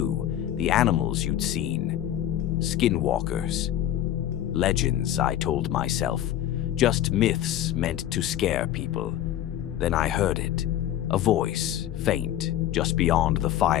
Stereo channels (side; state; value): right; quieter; 11.9 dB